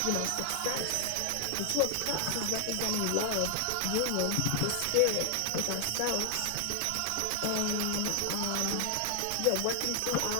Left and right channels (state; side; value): different; both; correlation 0.00